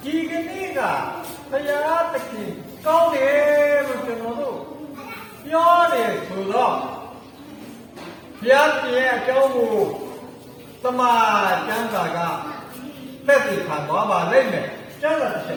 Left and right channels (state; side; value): identical; both; correlation 1.00